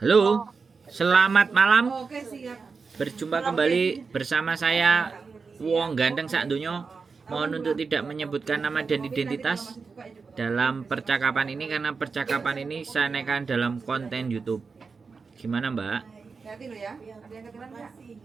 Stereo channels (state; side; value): quieter; left; 4.9 dB